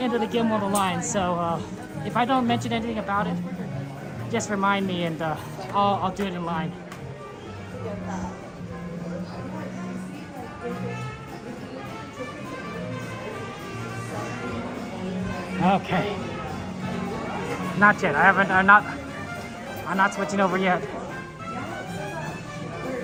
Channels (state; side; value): identical; both; correlation 1.00